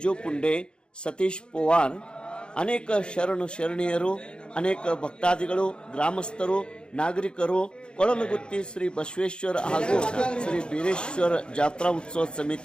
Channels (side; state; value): right; late; 0.051 ms